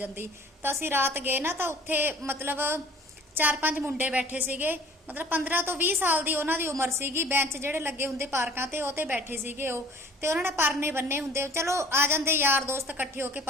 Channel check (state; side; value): normal; both; correlation 0.49